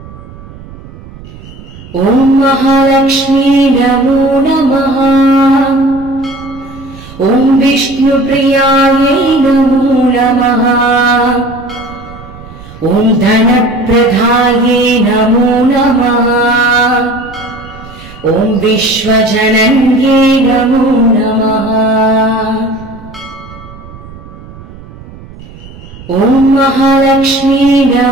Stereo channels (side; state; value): right; noise; rumble, 18 dB below the sound